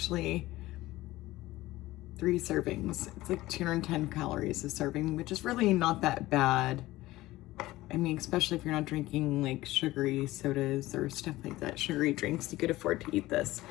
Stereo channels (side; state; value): right; quieter; 17.5 dB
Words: 3 servings. It's like 210 calories a serving, which is really not that bad. I mean, especially if you're not drinking like sugary sodas or stuff like that, sugary drinks, you could afford to eat this.